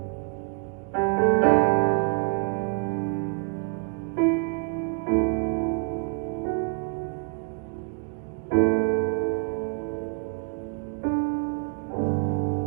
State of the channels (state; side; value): quieter; left; 38.1 dB